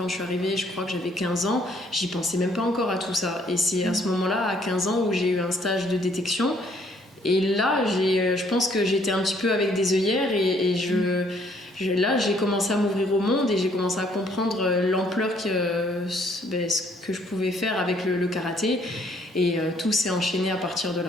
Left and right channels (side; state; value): both; normal; correlation 0.65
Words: je suis arrivée, je crois que j'avais 15 ans, j'y pensais même pas encore à tout ça. Et c'est à ce moment-là, à 15 ans, où j'ai eu un stage de détection. Et là, je pense que j'étais un petit peu avec des œillères là, j'ai commencé à m'ouvrir au monde et j'ai commencé à comprendre l'ampleur ce que je pouvais faire avec le karaté. Et tout s'est enchaîné à partir de